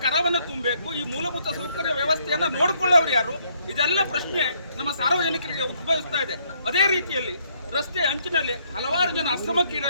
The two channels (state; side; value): inverted; both; correlation -0.69